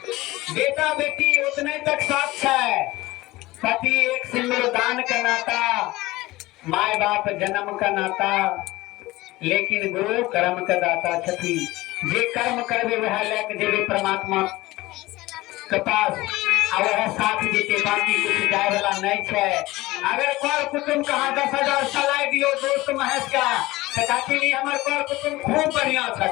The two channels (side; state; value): right; quieter; 19.2 dB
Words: बेटा बेटी उतने तक साथ है पति एक सिंदूर दान का नाता माय बाप जन्म का नाता लेकिन गुरु कर्म का दाता छथी जे कर्म करबे वह लेके जेबे परमात्मा के पास वह साथ देते बाकी कुछ जाए वाला नहीं है अगर कर कुटुम कहा 10,000 सलाई दियो दोस्त महेश का तो काकी हमारे कर कुटुम खूब बढ़िया